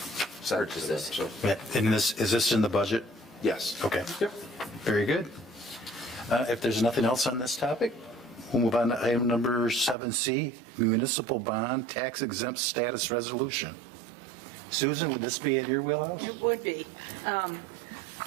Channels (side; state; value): left; drops out; at 10.0 s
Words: send Purchase to them, this. so, And is this in the budget? yes. Okay. Yep. Very good. If there's nothing else on this topic, we'll move on to item number 7C, municipal bond tax exempt status resolution. Susan, would this be in your wheelhouse? It would be.